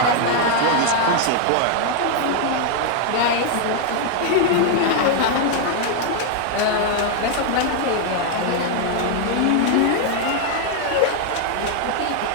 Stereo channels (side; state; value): both; different; correlation 0.00